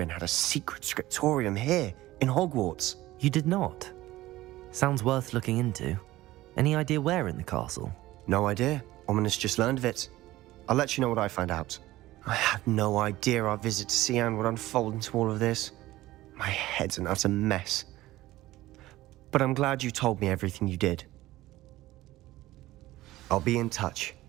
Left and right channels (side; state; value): left; quieter; 16.8 dB